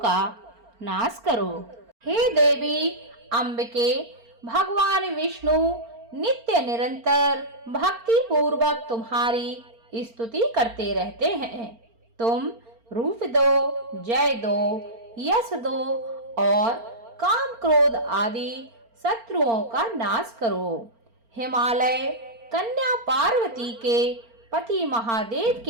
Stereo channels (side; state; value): left; late; 4.4 ms